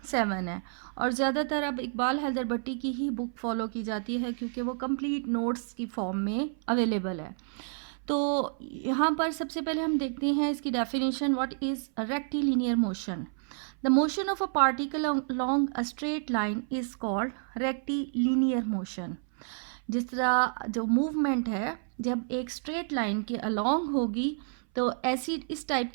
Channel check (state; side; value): silent; left; 58 dB below the other